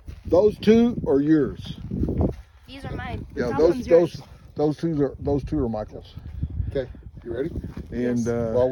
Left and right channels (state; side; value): identical; both; correlation 1.00